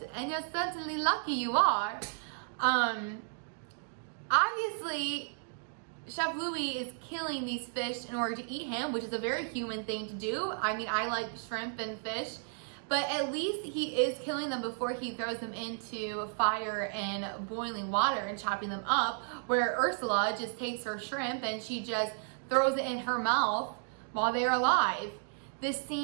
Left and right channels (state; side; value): silent; left; digital silence